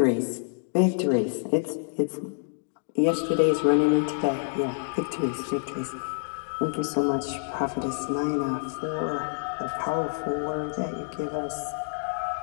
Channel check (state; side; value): silent; right; digital silence